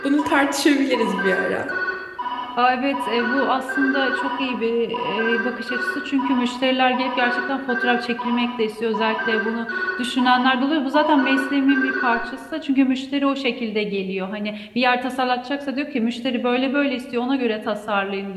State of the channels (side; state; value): both; identical; correlation 1.00